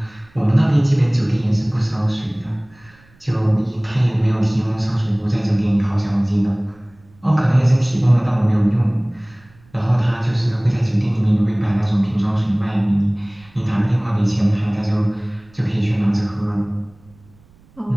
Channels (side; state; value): right; noise; rumble, 29 dB below the sound